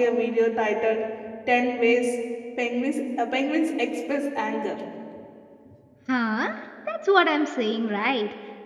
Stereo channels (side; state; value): both; identical; correlation 1.00